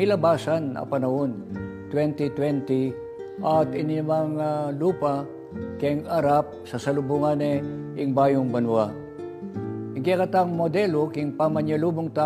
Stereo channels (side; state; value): both; identical; correlation 1.00